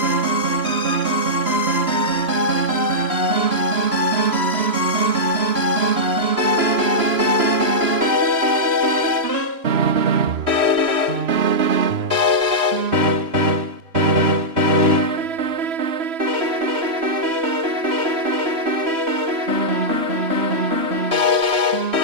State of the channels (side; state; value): left; late; 3.0 ms